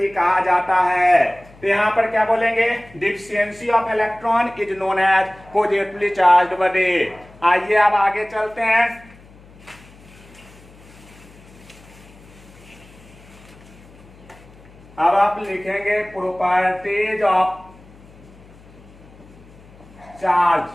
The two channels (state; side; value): noise; left; hum, 24 dB below the sound